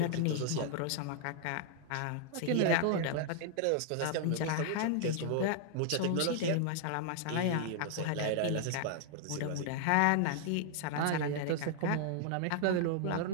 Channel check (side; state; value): both; different; correlation 0.00